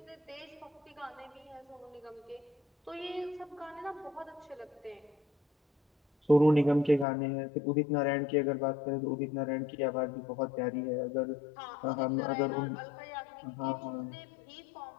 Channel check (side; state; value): right; drops out; at 7.1 s